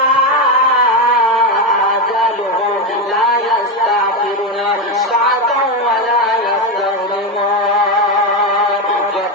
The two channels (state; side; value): normal; both; correlation 0.11